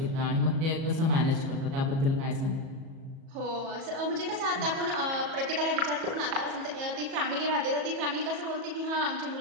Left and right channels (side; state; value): left; late; 37 ms